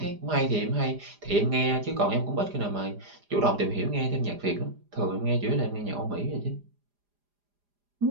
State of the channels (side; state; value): left; late; 4.9 ms